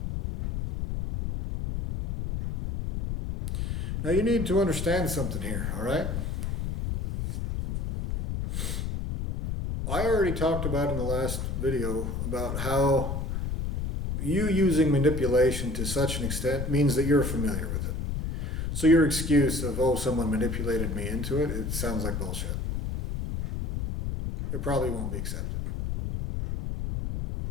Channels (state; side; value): noise; left; rumble, 3 dB below the sound